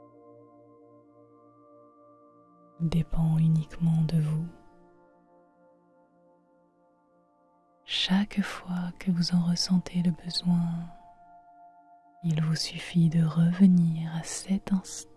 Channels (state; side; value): identical; both; correlation 1.00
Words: Il dépend uniquement de vous. Chaque fois que vous en ressentez le besoin, il vous suffit de revenir à cet